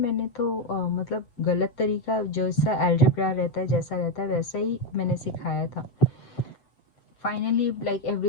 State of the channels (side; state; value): right; late; 8.0 ms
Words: तो मतलब गलत तरीका, जैसा अलजेब्रा रहता है जैसा रहता है वैसा ही मैंने सिखाया था. फाइनली लाइक